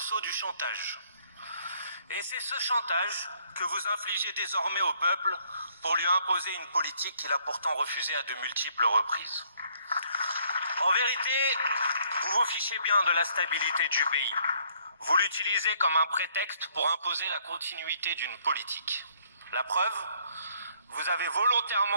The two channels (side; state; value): both; inverted; correlation -0.64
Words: du chantage. Et c'est ce chantage que vous infligez désormais au peuple pour lui imposer une politique qu'il a pourtant refusée à de multiples reprises. En vérité, vous vous fichez bien de la stabilité du pays. Vous l'utilisez comme un prétexte pour imposer la continuité d'une politique. La preuve, vous avez